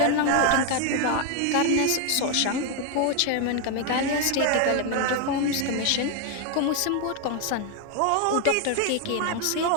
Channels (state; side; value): different; both; correlation 0.01